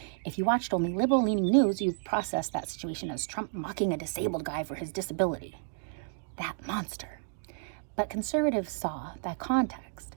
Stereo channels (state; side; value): silent; left; digital silence